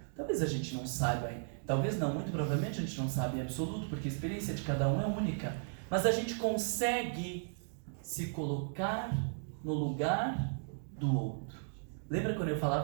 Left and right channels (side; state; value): left; silent; digital silence